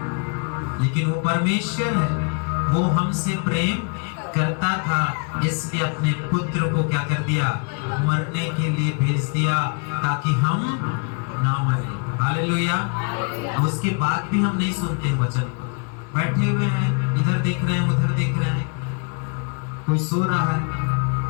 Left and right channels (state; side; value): quieter; right; 37.3 dB